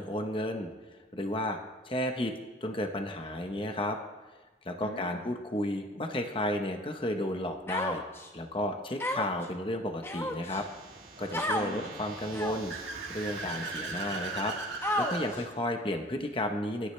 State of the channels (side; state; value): both; normal; correlation 0.48